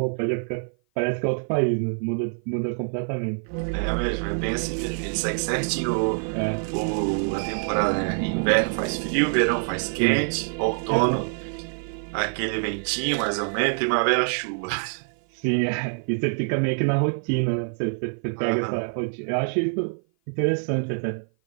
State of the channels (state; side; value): silent; left; 55 dB below the other